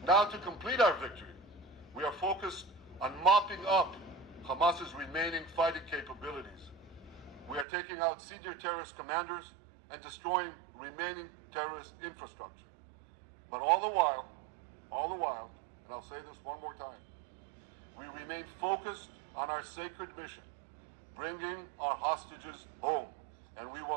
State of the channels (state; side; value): drops out; left; at 7.7 s